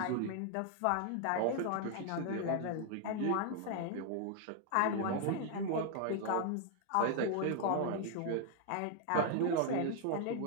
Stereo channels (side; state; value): both; different; correlation 0.00